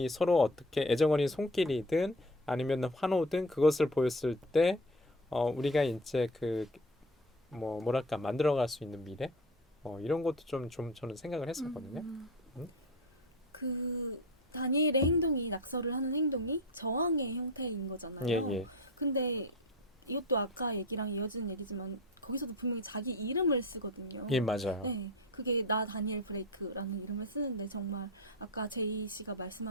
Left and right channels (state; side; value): normal; both; correlation 0.30